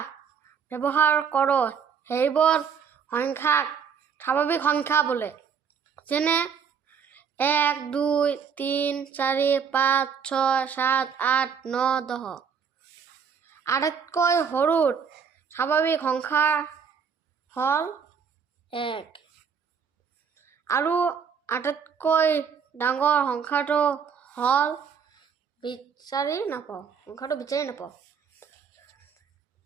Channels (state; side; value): quieter; left; 6.8 dB